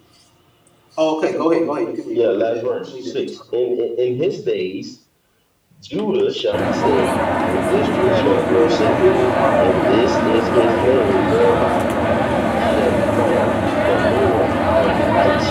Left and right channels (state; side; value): identical; both; correlation 1.00